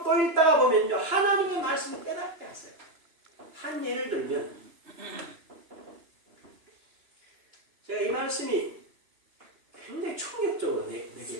또 읽다가 보면요. 하나님의 말씀을 깨닫게 하세요. 한 예를 들면 제가 이 말씀이 굉장히 충격적으로 내게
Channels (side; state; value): left; late; 2.9 ms